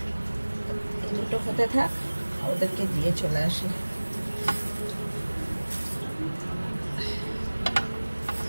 এই দুটো হতে থাক, ওদেরকে দিয়ে চলে আসি।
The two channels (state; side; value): inverted; both; correlation -1.00